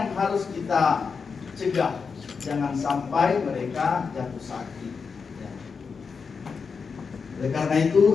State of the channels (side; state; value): right; quieter; 5.4 dB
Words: harus kita cegah, jangan sampai mereka jatuh sakit. Ya. Oleh karena